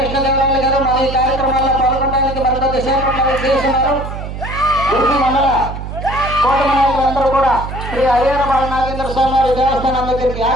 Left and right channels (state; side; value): noise; right; hum, 8 dB below the sound